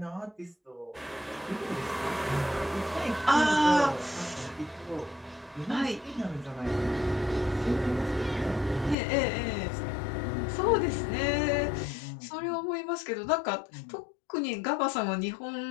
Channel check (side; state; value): right; drops out; at 9.0 s